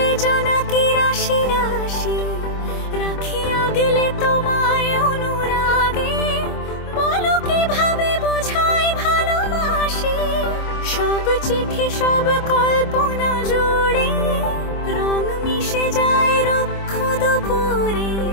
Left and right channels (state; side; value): late; right; 25 ms